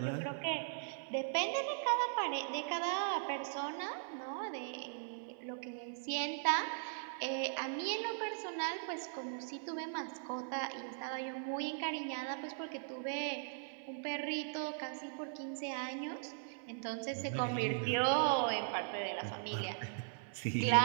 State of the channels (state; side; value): silent; left; 52 dB below the other